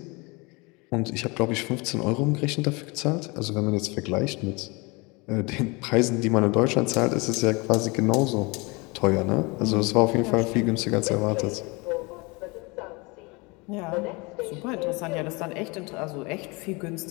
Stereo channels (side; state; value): right; quieter; 27.1 dB